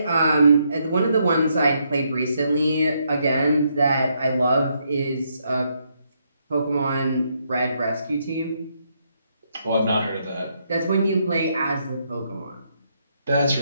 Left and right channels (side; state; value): both; inverted; correlation -0.76